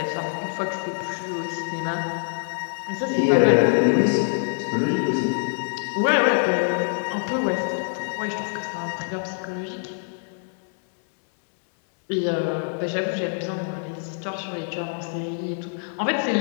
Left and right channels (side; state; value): right; silent; digital silence